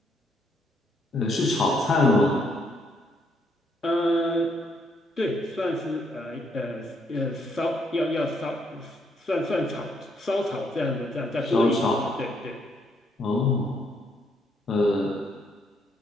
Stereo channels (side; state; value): both; normal; correlation 0.72